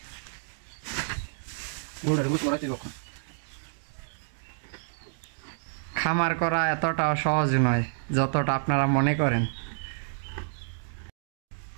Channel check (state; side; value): silent; left; digital silence